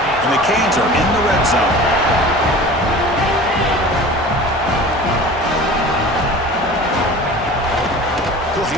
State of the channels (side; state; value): both; normal; correlation 0.39